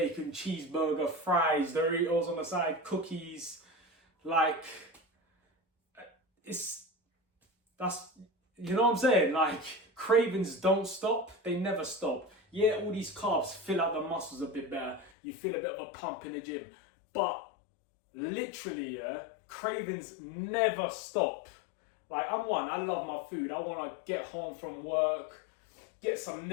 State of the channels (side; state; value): right; drops out; at 15.1 s